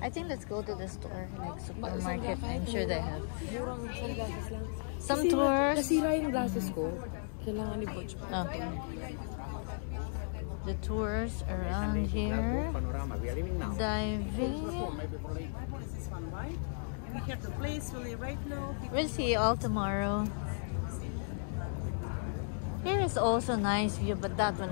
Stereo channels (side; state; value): right; silent; digital silence